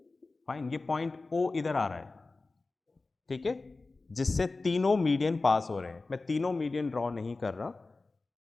फाइन, ये पॉइंट O इधर आ रहा है, ठीक है, जिससे तीनों मीडियन पास हो रहे हैं। मैं तीनों मीडियन ड्रॉ नहीं कर रहा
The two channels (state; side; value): quieter; right; 3.5 dB